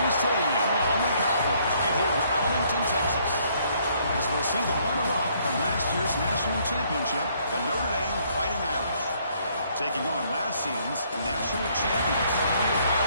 Stadium, the home of the Cowboys, right here in Arlington, Texas. As we'll see the runner-up from last year's national championship, the Notre Dame Fighting Irish, taking on last season's national champions, the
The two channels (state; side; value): inverted; both; correlation -0.66